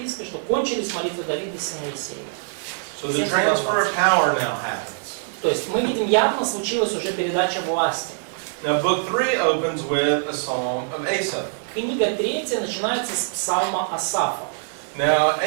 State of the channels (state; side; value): silent; left; digital silence